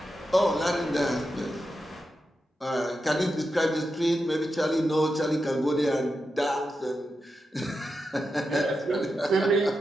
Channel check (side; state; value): both; normal; correlation 0.88